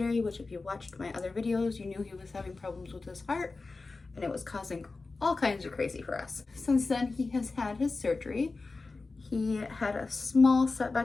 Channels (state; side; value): quieter; right; 3.8 dB